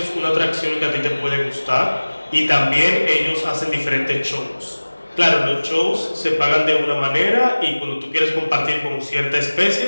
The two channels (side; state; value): both; inverted; correlation -1.00